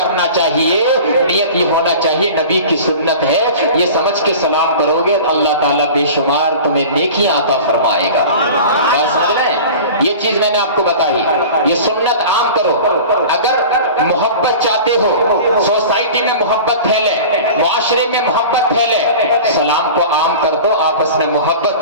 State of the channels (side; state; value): both; inverted; correlation -0.37